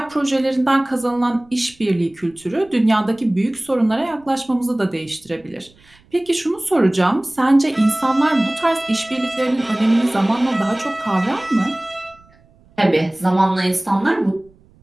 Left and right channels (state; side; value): noise; right; rumble, 29 dB below the sound